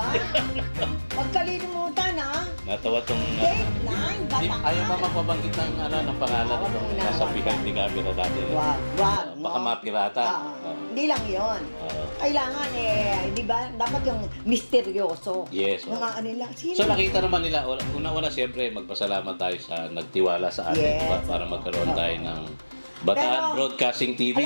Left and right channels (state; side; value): inverted; both; correlation -1.00